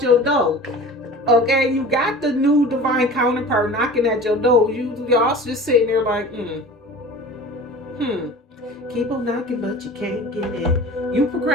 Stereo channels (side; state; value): both; normal; correlation 0.39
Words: door. Okay, you got the new divine counterpart knocking at your door. Y'all just sitting there like, keep on knocking, but you can't get in. You